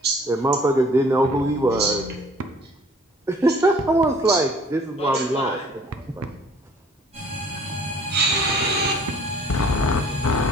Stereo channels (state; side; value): normal; both; correlation 0.54